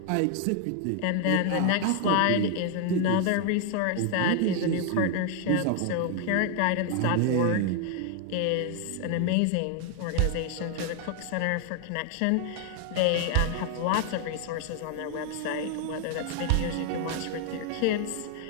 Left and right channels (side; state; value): both; different; correlation 0.00